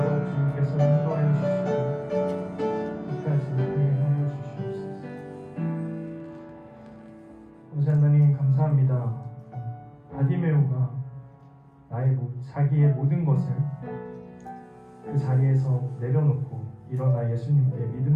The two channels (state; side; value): identical; both; correlation 1.00